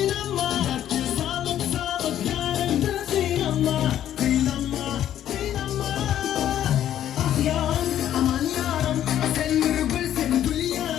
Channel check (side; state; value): right; quieter; 11.3 dB